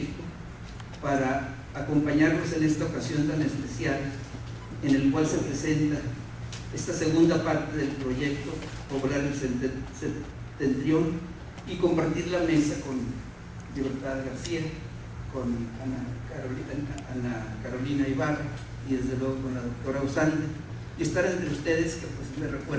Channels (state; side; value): identical; both; correlation 1.00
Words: para acompañarnos en esta ocasión tan especial en el cual se presenta esta segunda parte del proyecto Poblar el Septentrión y compartir la mesa con Libertad García, con Ana Carolina Ibarra y desde luego con la doctora Usande, y estar entre ustedes que pues me